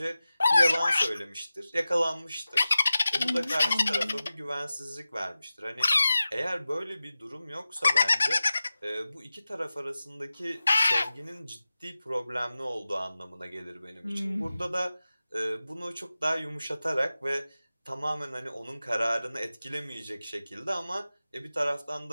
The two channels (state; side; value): inverted; both; correlation -0.94